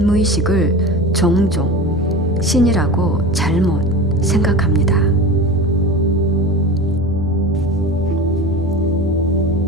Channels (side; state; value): both; normal; correlation 0.30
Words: 무의식을 종종 신이라고 잘못 생각합니다.